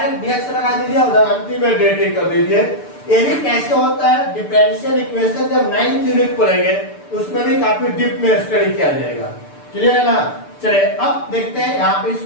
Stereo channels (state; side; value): late; right; 6.8 ms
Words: dx लगा दीजिए, उधर अंतिम में dt कर दीजिए। ये भी कैसे होता है डिफरेंशियल इक्वेशन जब 9th यूनिट पढ़ेंगे तो उसमें भी काफी डीप में स्टडी किया जाएगा। क्लियर है ना? चलिए अब देखते हैं। यहाँ पे